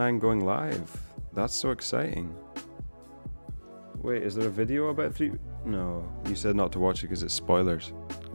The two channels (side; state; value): both; inverted; correlation -1.00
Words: going live? That's so exciting. Wait, is there a video about 3? No, you said not to watch it because it's spoilers.